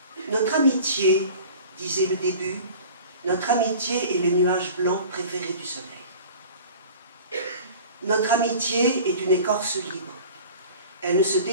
Notre amitié, disait le début, notre amitié est le nuage blanc préféré du soleil. Notre amitié est une écorce libre. Elle ne se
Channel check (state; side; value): inverted; both; correlation -0.41